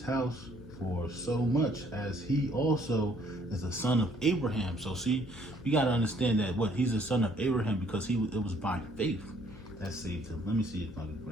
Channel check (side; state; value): left; noise; hum, 17 dB below the sound